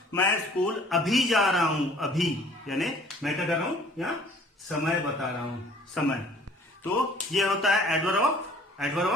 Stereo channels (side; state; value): both; normal; correlation 0.54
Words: मैं स्कूल अभी जा रहा हूं, अभी यानी मैं क्या कर रहा हूं, या समय बता रहा हूं, समय। तो ये होता है एडवर्ब